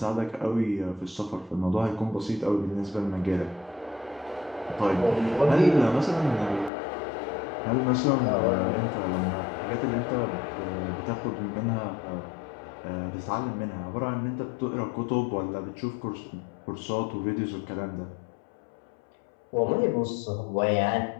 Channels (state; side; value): drops out; right; at 6.7 s